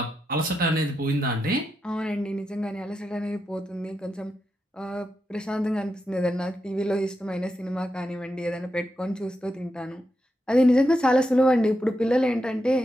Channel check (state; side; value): normal; both; correlation 0.86